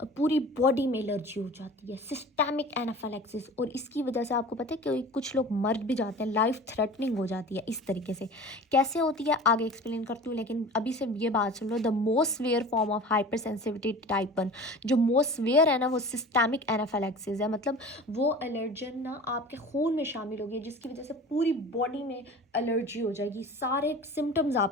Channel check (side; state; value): both; normal; correlation 0.39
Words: पूरी बॉडी में एलर्जी हो जाती है, सिस्टेमिक एनाफाइलैक्सिस, और इसकी वजह से आपको पता है कि कुछ लोग मर भी जाते हैं, लाइफ थ्रेटनिंग हो जाती है। इस तरीके से कैसे होती है आगे एक्सप्लेन करती हूँ, लेकिन अभी से ये बात सुन लो। The most severe form of hypersensitivity type 1, जो मोस्ट सिवियर है ना, वो सिस्टेमिक एनाफाइलैक्सिस है। मतलब वो एलर्जन ना आपके खून में शामिल होगी, जिसकी वजह से पूरी बॉडी में एलर्जी हो जाएगी, सारे सिम्टम्स